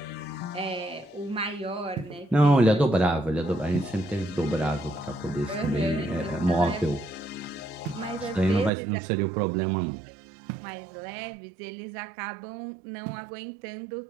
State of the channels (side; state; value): left; drops out; at 8.7 s